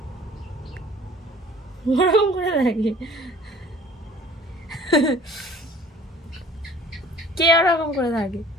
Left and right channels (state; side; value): normal; both; correlation 0.51